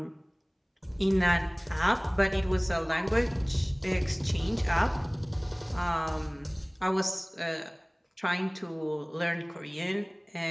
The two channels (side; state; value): both; identical; correlation 1.00